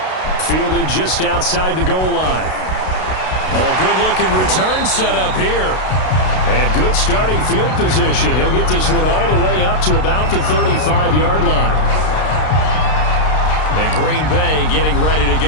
Fielded just outside the goal line. Oh, a good-looking return set up here. And good starting field position. He'll get this one all the way up to about the 35-yard line. And Green Bay getting ready to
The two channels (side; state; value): right; late; 32 ms